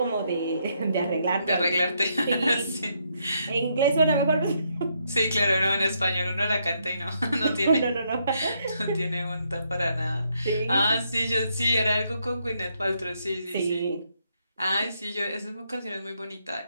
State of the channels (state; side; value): inverted; both; correlation -0.76